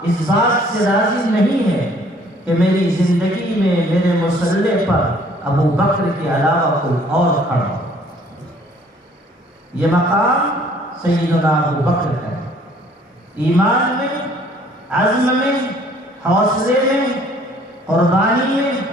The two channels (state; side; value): normal; both; correlation 0.58